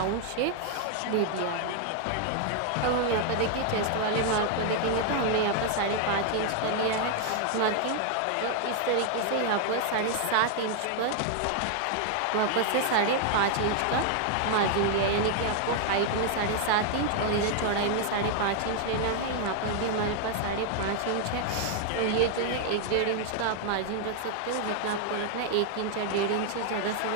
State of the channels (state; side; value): different; both; correlation 0.00